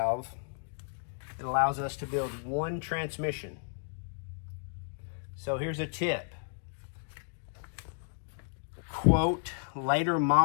it allows us to build one transmission. So here's a tip. Quote, later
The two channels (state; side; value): silent; right; digital silence